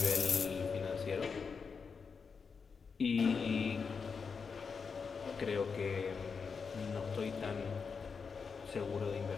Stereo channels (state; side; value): quieter; right; 5.5 dB